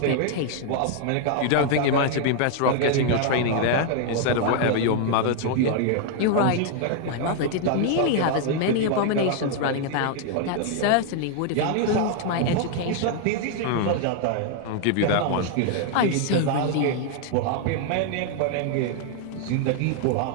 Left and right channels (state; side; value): different; both; correlation 0.00